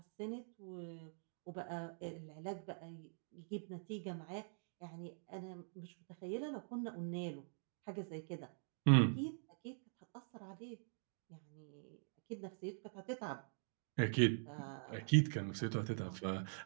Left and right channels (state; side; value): silent; left; digital silence